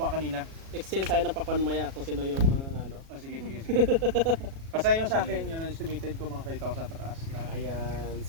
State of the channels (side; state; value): left; late; 37 ms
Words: kanina. exchange tayo ng pakwan maya kung sino yung ano. Oh, sige. Basta yung sa akin, yun ang estimated ko mga 5,000 pataas. Lahat. Ayan.